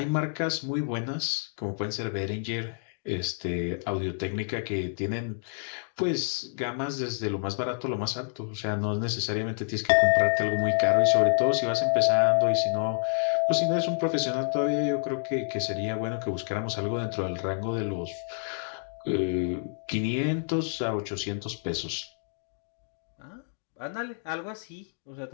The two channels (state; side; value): silent; right; digital silence